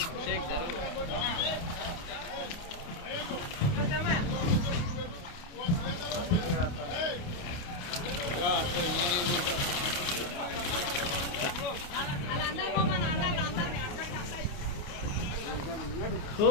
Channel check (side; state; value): right; late; 28 ms